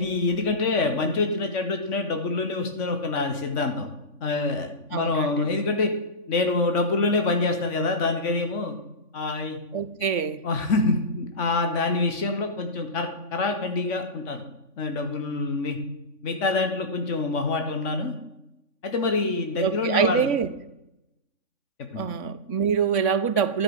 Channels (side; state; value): right; late; 3.5 ms